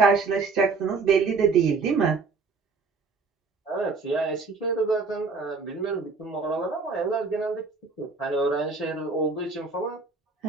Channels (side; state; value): left; quieter; 4.4 dB